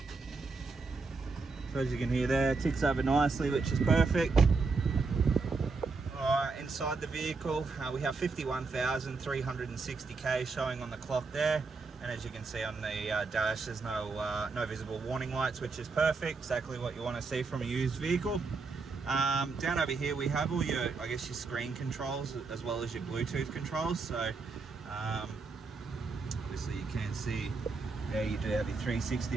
So as you can hear there, ticks over nicely, which is perfect. Alright, inside the vehicle, we have 51,360 K showing on the clock there. And as you can see on the dash, there's no visible warning lights, which is perfect. Exactly what you want to see from a used vehicle. Down over here, we have all your, I guess, your screen controls as well as your Bluetooth controls. So obviously you can see there you do have your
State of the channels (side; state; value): left; quieter; 4.2 dB